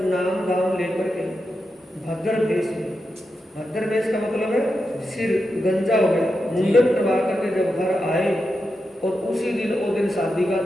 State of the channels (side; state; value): both; normal; correlation 0.88